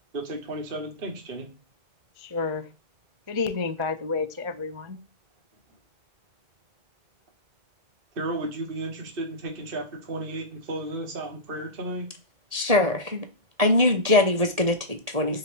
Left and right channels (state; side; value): late; left; 1.8 ms